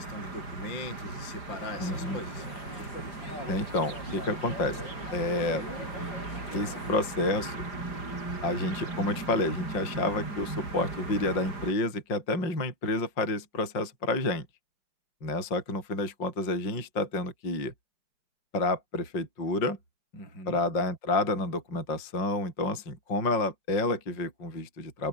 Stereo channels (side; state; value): right; late; 5.6 ms